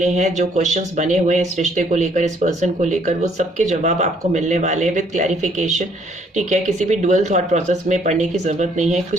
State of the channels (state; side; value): normal; both; correlation 0.65